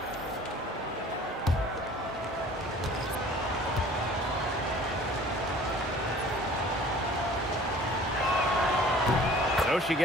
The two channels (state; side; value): normal; both; correlation 0.48